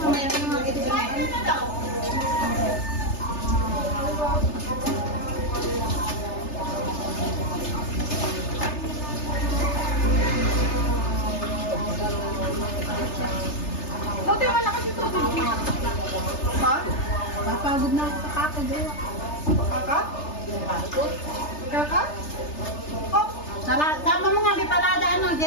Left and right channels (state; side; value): late; right; 3.3 ms